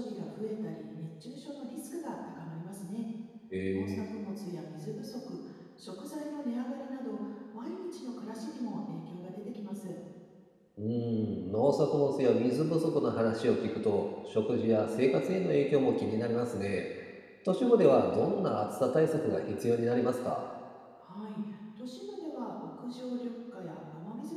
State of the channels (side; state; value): both; identical; correlation 1.00